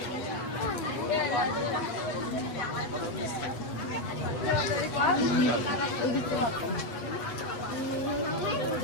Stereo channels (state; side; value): late; right; 8.3 ms